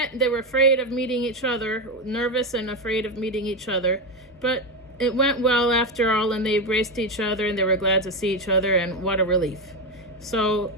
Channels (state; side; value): normal; both; correlation 0.12